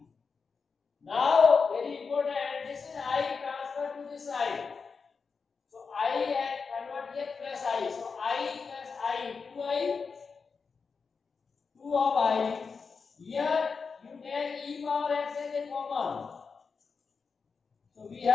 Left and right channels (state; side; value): quieter; right; 5.2 dB